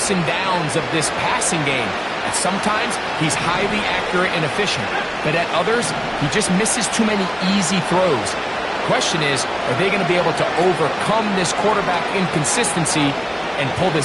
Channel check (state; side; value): identical; both; correlation 1.00